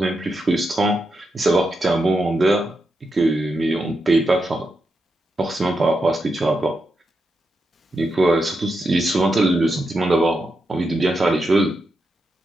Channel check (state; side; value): normal; both; correlation 0.86